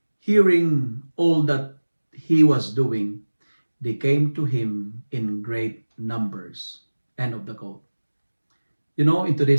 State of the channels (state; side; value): inverted; both; correlation -1.00